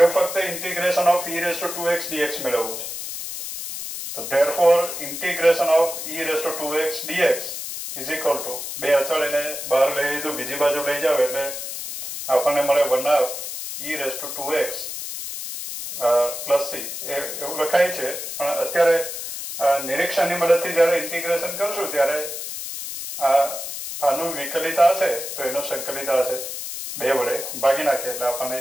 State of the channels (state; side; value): noise; left; hiss, 7 dB below the sound